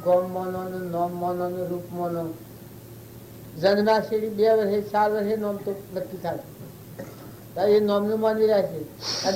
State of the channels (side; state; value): both; identical; correlation 1.00